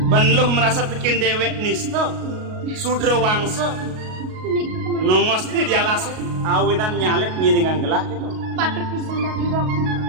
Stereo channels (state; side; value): late; left; 38 ms